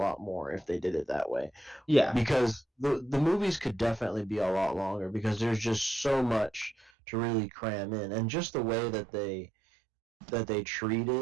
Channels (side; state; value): left; drops out; at 6.9 s